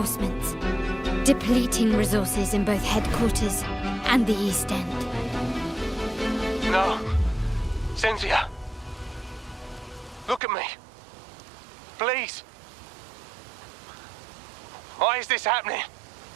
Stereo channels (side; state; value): left; drops out; at 10.4 s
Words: depleting resources in both headquarters and the East End. No. Cynthia. Look at me. Please. Why is this happening?